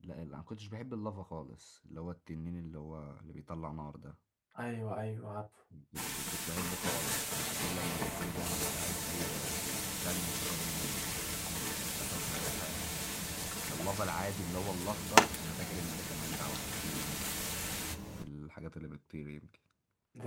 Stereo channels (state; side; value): identical; both; correlation 1.00